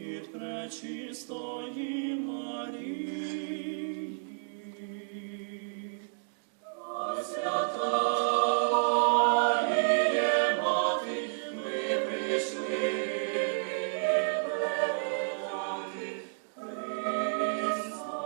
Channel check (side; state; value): left; silent; digital silence